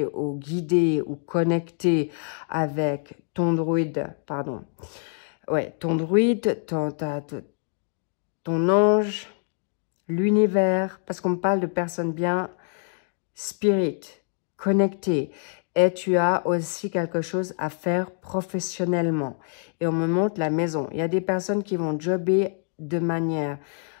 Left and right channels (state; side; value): silent; right; digital silence